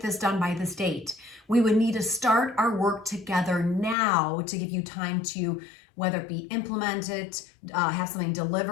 done by this date, we would need to start our work together now to give you time to, whether it be implement it, have something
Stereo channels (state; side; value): drops out; right; at 4.0 s